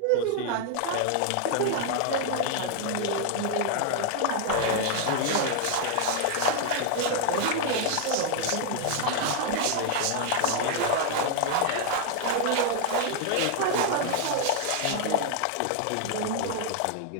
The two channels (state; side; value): different; both; correlation 0.00